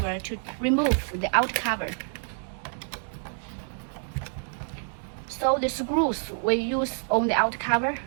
to remove the out cover. So the screws we use on the out cover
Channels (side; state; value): left; silent; 60 dB below the other